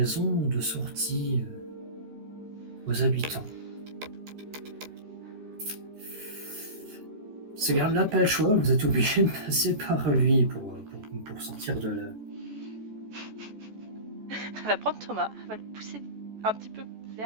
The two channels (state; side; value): late; left; 14 ms